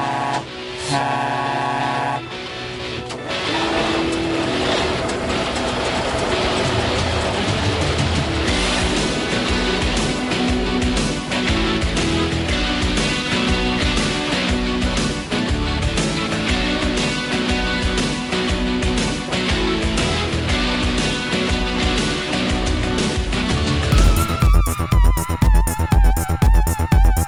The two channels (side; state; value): both; identical; correlation 1.00